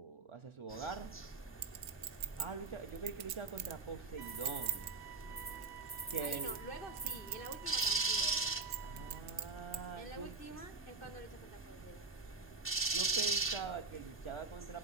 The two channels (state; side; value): quieter; left; 3.9 dB